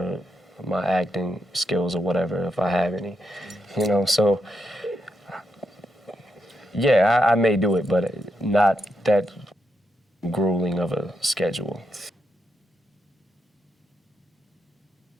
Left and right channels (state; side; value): normal; both; correlation 0.82